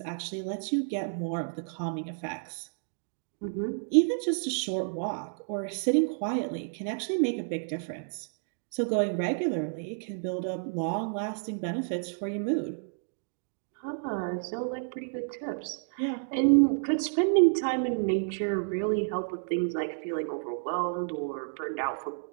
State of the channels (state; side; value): silent; left; digital silence